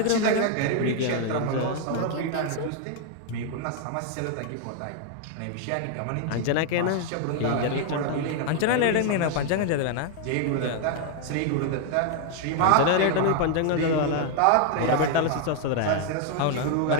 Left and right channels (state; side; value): different; both; correlation 0.00